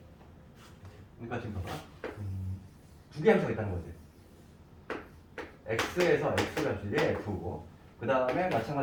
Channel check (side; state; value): both; identical; correlation 1.00